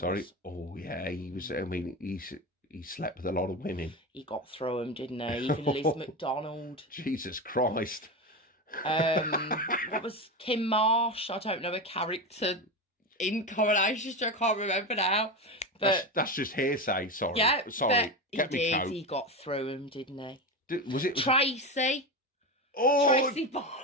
Oh, yeah. He was, I mean, he slept with a lot of women. He got through them, didn't he? Even Liz McDonald. Jesus Christ. What was Kim Marsh? I don't know, a character in Coronation Street. I can't remember now. But that's just hearsay. Sorry. yeah, Sorry. but he did. He got through him, didn't he? Was it Tracy? Oh, Tracy Barlow.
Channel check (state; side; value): normal; both; correlation 0.20